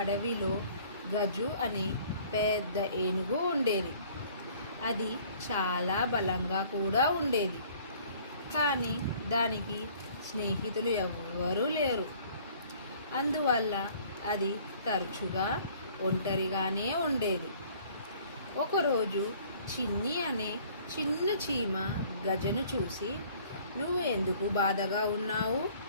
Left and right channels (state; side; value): inverted; both; correlation -0.55